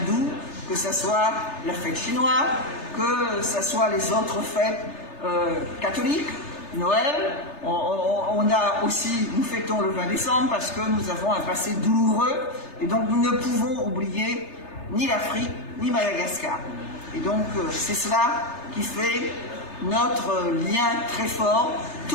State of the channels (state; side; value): late; right; 3.3 ms